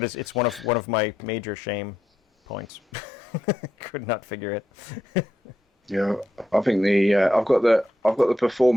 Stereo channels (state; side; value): normal; both; correlation 0.82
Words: it's one of my major shame points. Could not figure it. Yeah, I think I've got the